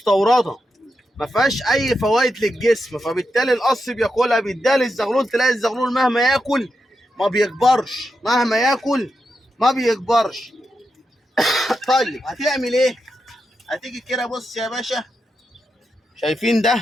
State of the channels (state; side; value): normal; both; correlation 0.86